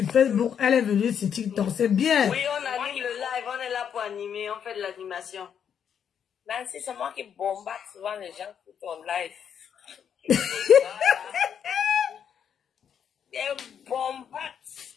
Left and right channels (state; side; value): quieter; right; 8.1 dB